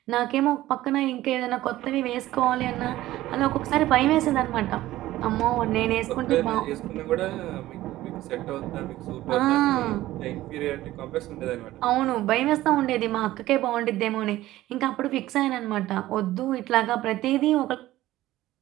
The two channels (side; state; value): left; quieter; 15.6 dB